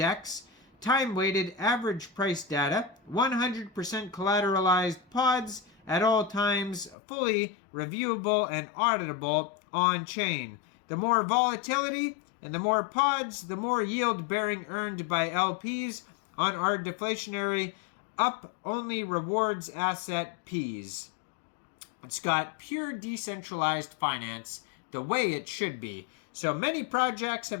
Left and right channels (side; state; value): right; drops out; at 7.0 s